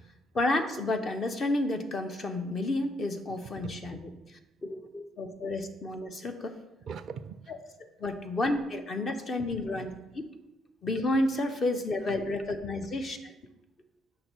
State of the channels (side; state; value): both; normal; correlation 0.73